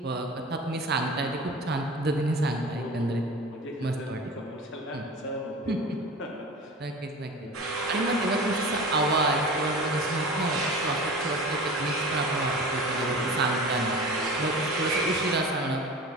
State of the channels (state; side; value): normal; both; correlation 0.35